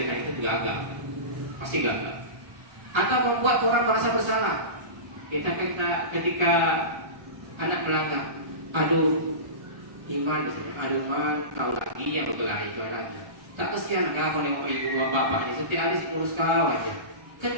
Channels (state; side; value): late; left; 1.3 ms